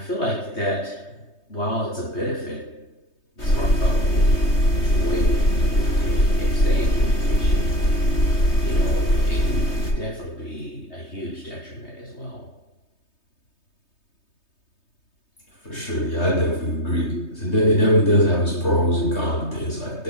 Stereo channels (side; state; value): right; late; 3.2 ms